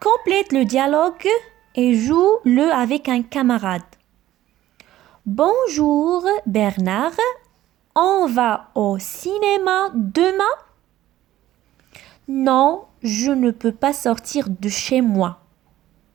le dialogue et joue-le avec un camarade. Bonjour Bernard, on va au cinéma demain? Non, je ne peux pas sortir de chez moi.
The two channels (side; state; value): left; quieter; 14.1 dB